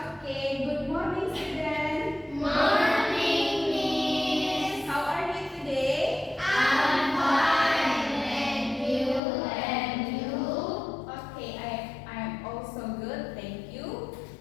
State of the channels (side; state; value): right; drops out; at 9.2 s